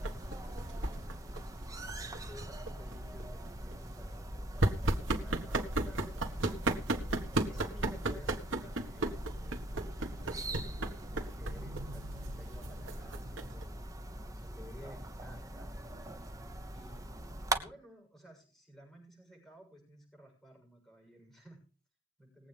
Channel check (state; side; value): normal; both; correlation 0.57